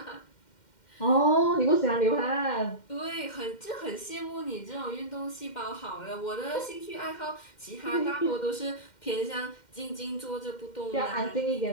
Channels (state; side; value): late; right; 2.1 ms